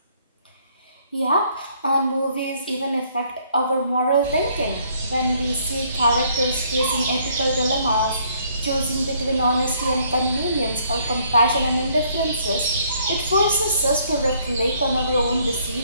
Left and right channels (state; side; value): inverted; both; correlation -0.65